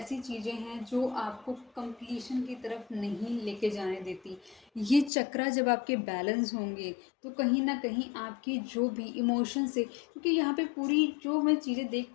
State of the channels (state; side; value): drops out; right; at 5.1 s